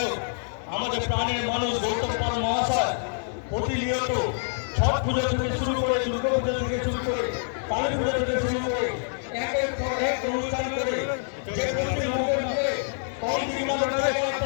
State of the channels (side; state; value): right; silent; digital silence